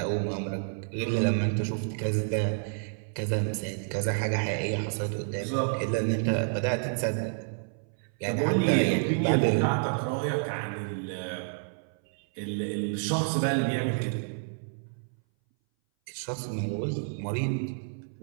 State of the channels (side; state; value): left; silent; 58 dB below the other